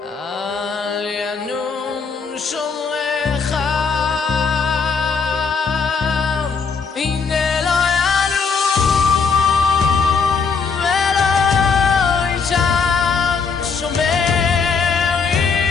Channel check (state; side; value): quieter; right; 5.3 dB